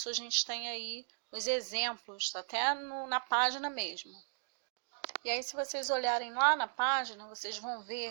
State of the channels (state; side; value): silent; left; digital silence